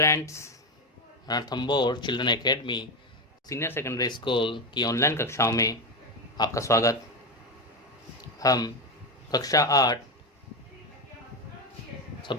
Ranthambore children academy senior secondary school की online कक्षाओं में आपका स्वागत। हम कक्षा 8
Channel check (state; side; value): normal; both; correlation 0.13